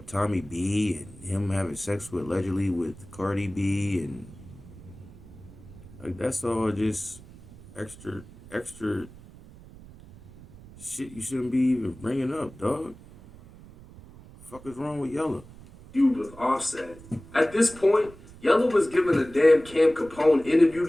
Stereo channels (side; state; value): right; noise; rumble, 19 dB below the sound